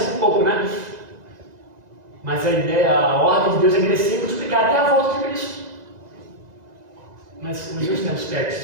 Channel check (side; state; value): left; late; 2.0 ms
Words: um pouco, né? Mas a ideia, a ordem de Deus é crescer e multiplicar até a volta de Cristo. Mas hoje tem